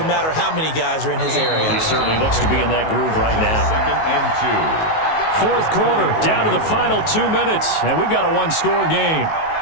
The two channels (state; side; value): late; right; 19 ms